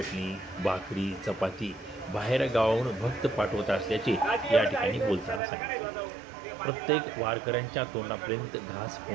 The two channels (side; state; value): left; drops out; at 5.4 s